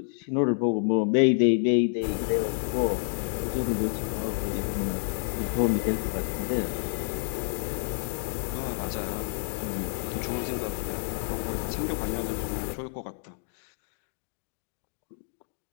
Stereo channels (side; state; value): right; silent; digital silence